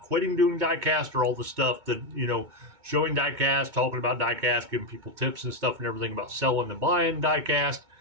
quitting doing diecast or all the stuff that, showing diecast, talking about diecast, giving people tips and stuff and everything about selling and buying diecast.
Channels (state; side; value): late; left; 2.2 ms